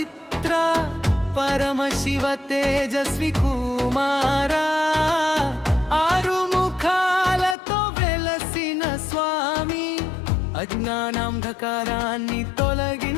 పరమ శివ తేజస్వి కుమారా, ఆరు ముఖాలతో వెలసిన స్వామి, అజ్ఞానాంధకారాన్ని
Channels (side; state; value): right; drops out; at 7.6 s